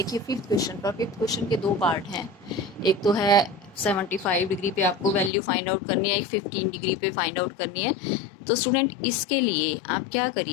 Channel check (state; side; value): drops out; right; at 5.3 s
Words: फिफ्थ क्वेश्चन पर, फिफ्थ क्वेश्चन के दो पार्ट हैं। एक तो है 75 डिग्री पे आपको वैल्यू फाइंड आउट करनी है, एक 15 डिग्री पे फाइंड आउट करनी है। तो स्टूडेंट इसके लिए आप क्या